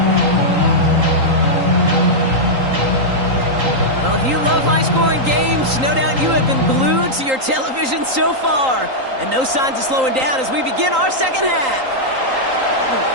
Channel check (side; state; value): left; late; 3.8 ms